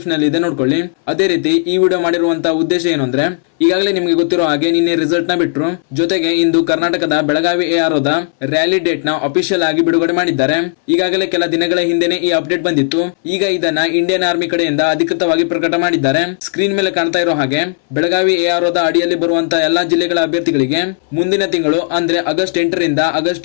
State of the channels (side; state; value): right; silent; 64 dB below the other